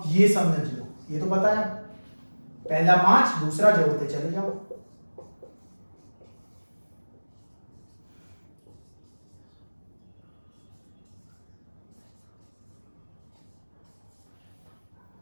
ये समझ लो, ये तो पता है, पहला 5, दूसरा जोड़ते चले जाओ।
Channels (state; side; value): inverted; both; correlation -1.00